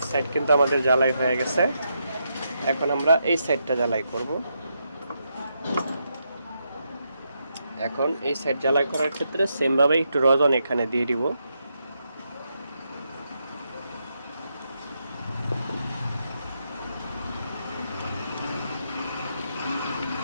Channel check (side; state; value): both; inverted; correlation -0.82